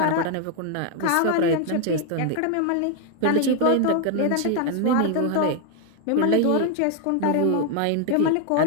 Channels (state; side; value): different; both; correlation 0.00